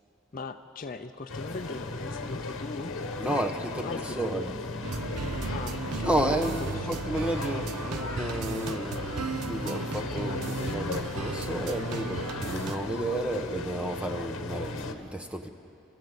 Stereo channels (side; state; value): both; normal; correlation 0.58